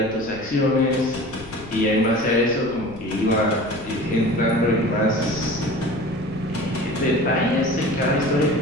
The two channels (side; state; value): left; noise; rumble, 17 dB below the sound